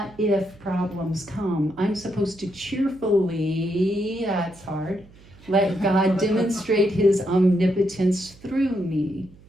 if, problems come, I'm supposed to cheerfully, that's hard, let God demonstrate his omnipotence through me.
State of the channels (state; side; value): noise; right; hum, 24 dB below the sound